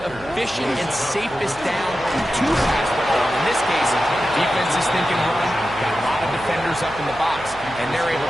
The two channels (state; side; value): noise; right; hum, 19 dB below the sound